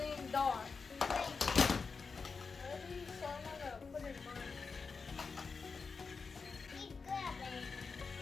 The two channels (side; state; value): right; quieter; 4.9 dB